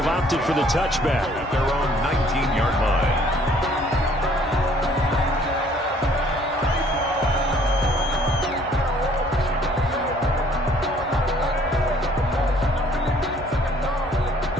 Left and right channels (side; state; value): both; normal; correlation 0.59